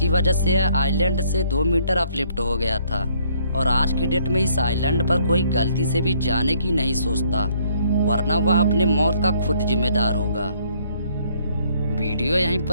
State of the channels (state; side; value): inverted; both; correlation -0.65